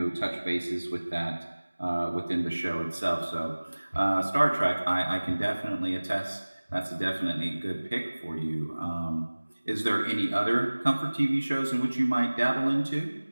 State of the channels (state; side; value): inverted; both; correlation -1.00